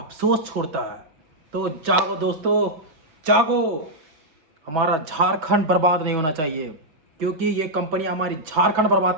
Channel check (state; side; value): late; left; 6.2 ms